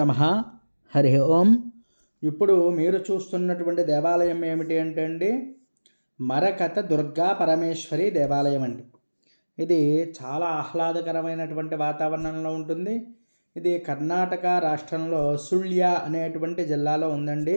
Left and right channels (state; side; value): inverted; both; correlation -1.00